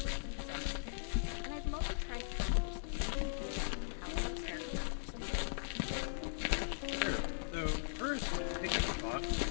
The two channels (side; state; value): right; silent; digital silence